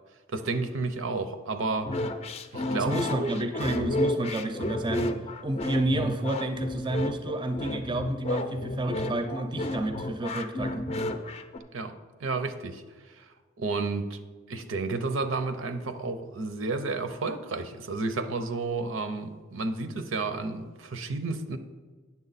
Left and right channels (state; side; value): normal; both; correlation 0.50